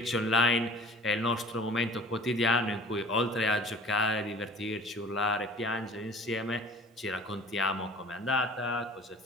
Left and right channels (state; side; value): normal; both; correlation 0.46